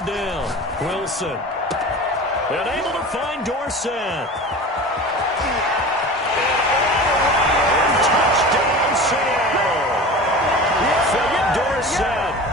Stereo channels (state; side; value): normal; both; correlation 0.35